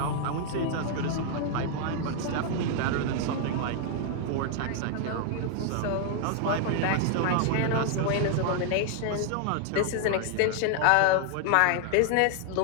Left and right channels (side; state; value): both; different; correlation 0.00